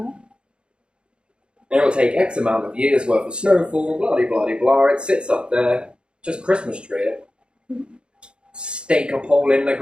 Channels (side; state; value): left; late; 0.054 ms